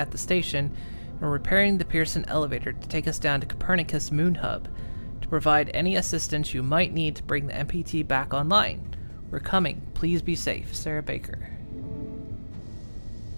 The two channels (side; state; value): both; inverted; correlation -1.00